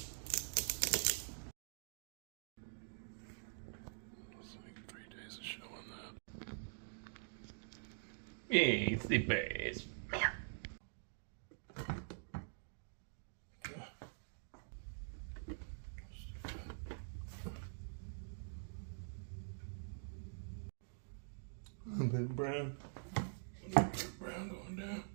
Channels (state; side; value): silent; left; digital silence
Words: It's like 3 days of showing that. It's the best. A bit brown. A bit brown going down.